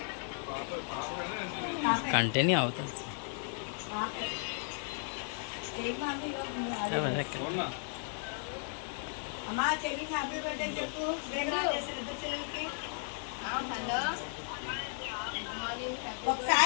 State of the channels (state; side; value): silent; right; 54 dB below the other